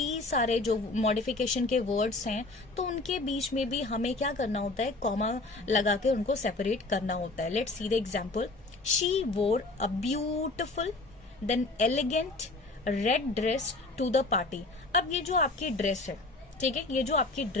सारे जो मॉडिफिकेशन के वर्ड्स हैं, तो उनके बीच में भी हमें क्या करना होता है, कॉमा लगा के उनको सेपरेट करना होता है। Let's see the example, she wore a beautiful then elegant red dress to the party. अब ये जो आपकी ड्रेस है, ठीक है, ये जो आपकी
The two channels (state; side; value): quieter; right; 3.2 dB